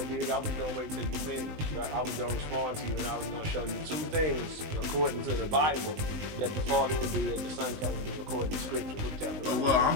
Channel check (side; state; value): left; late; 20 ms